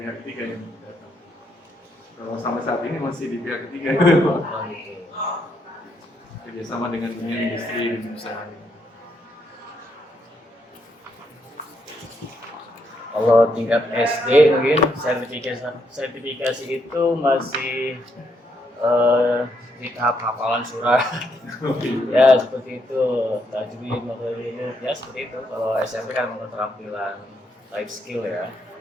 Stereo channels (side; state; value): both; normal; correlation 0.76